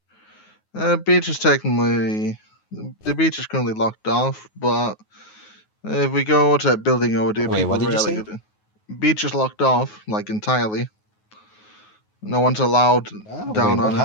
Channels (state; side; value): late; right; 9.4 ms